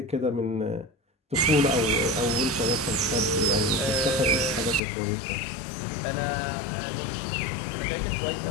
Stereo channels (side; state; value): right; drops out; at 4.8 s